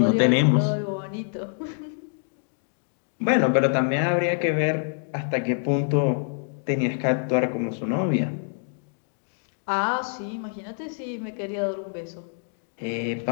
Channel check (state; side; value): silent; right; digital silence